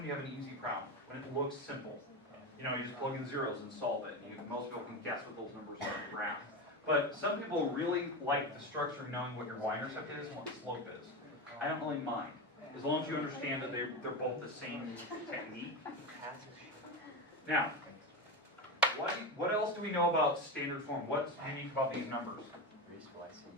you have an easy problem, when it looks simple. You know, you just plug in zeros and solve it. Most people can guess what those numbers are on the graph. But some people really like the structure of knowing what your y-intercept is and what the slope is. I don't really mind, as long as you understand that they're both the same technique. Now, what else do we know about standard form? What's unique about these numbers?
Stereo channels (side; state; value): both; normal; correlation 0.18